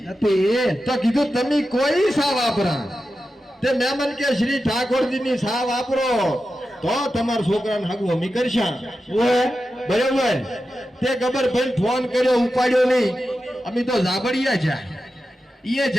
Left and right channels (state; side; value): normal; both; correlation 0.91